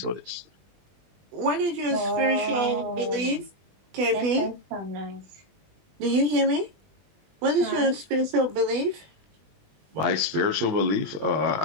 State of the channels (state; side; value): late; left; 20 ms